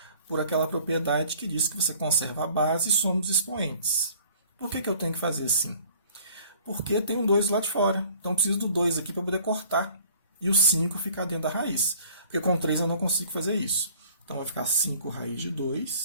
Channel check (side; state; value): both; inverted; correlation -0.53